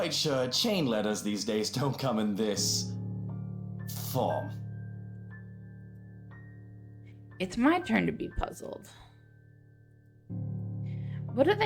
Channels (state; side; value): identical; both; correlation 1.00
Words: sure chain letters these days don't come in this form. It's my turn to be puzzled. What do